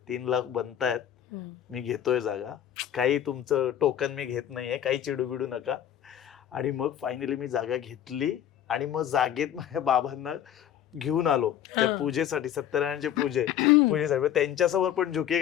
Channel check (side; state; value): right; quieter; 10.5 dB